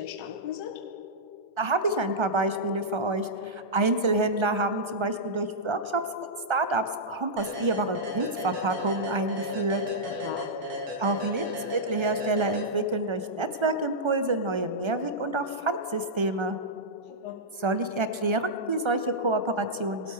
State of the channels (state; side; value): late; left; 1.3 ms